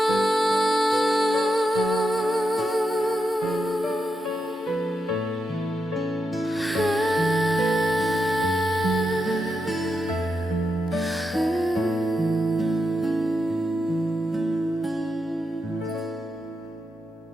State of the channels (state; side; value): normal; both; correlation 0.85